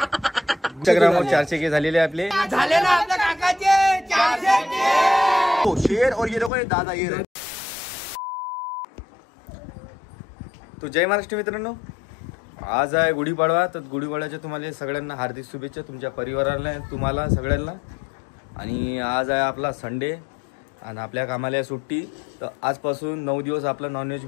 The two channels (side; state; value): right; drops out; at 6.5 s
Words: इंस्टाग्रामवर 400K झालेले आपले झाले ना आपल्या काकाचे 400K शेर और ये देखो ये दादा ये रहे। तो जय महाराष्ट्र मित्रांनो, आज आहे गुढीपाडवा। तर गुढीपाडव्याच्या तुम्हाला सगळ्यांना हार्दिक शुभेच्छा, तुमच्या परिवाराला, तुम्हाला सगळ्यांना। आणि आज आहे आपला संडे आणि आपल्या कामाला आहे सुट्टी। तर आजपासून 9 दिवस आपला नॉनव्हेज